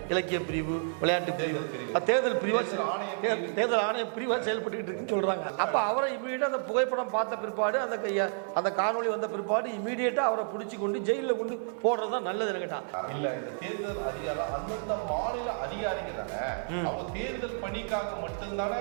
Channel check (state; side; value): silent; left; 57 dB below the other